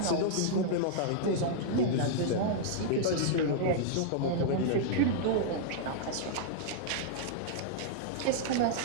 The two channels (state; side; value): different; both; correlation -0.01